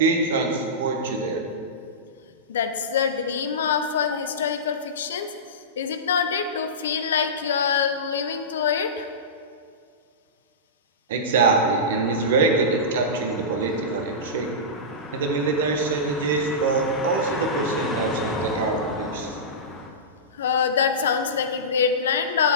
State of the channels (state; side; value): normal; both; correlation -0.19